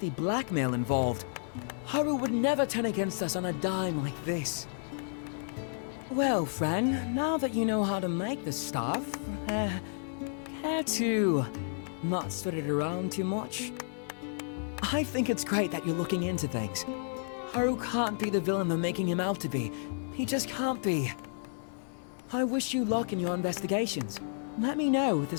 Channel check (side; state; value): right; silent; 57 dB below the other